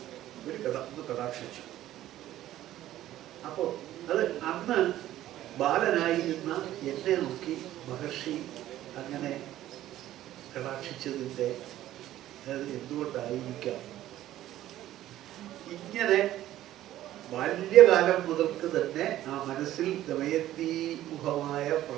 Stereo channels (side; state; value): left; quieter; 13.7 dB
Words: ഒന്ന് കടാക്ഷിച്ചു. അപ്പോൾ അത് അന്ന് ബാലനായിരുന്ന എന്നെ നോക്കി മഹർഷി അങ്ങനെ കടാക്ഷിച്ചതിൻ്റെ അത് എന്തുകൊണ്ടായിരിക്കാം? ഇങ്ങനെ ബാല്യകാലം മുതൽക്ക് തന്നെ ആ മനസ്സിൽ ദമയന്തിമുഖമായ